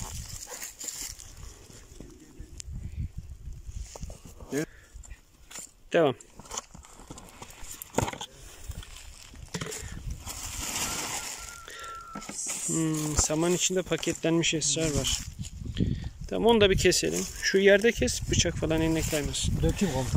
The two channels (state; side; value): identical; both; correlation 1.00